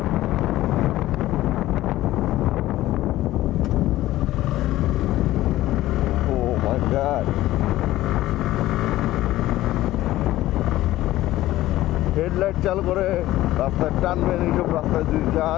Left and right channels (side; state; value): right; quieter; 15.6 dB